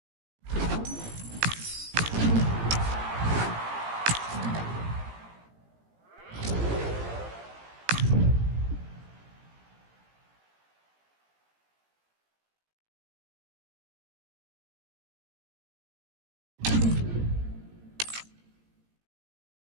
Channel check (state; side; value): late; left; 17 ms